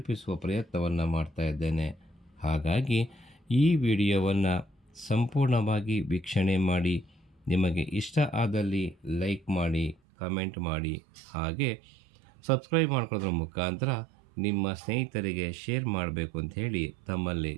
ಪ್ರಯತ್ನವನ್ನು ಮಾಡ್ತಾ ಇದ್ದೇನೆ. ಹಾಗಾಗಿ ಈ ವಿಡಿಯೋವನ್ನು ಸಂಪೂರ್ಣವಾಗಿ ವೀಕ್ಷಣೆ ಮಾಡಿ, ನಿಮಗೆ ಇಷ್ಟ ಆದಲ್ಲಿ ಲೈಕ್ ಮಾಡಿ, ಕಮೆಂಟ್ ಮಾಡಿ, ಹಾಗೆ ಸಬ್ಸ್ಕ್ರೈಬ್ ಮಾಡ್ಕೊಳ್ಳೋದ್ರ ಮುಖಾಂತರ ನಿಮ್ಮ ಸ್ನೇಹಿತರಿಗೆ ಶೇರ್ ಮಾಡಬೇಕು ಅಂತ ಹೇಳಿ ತಮ್ಮಲ್ಲಿ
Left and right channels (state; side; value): drops out; left; at 10.0 s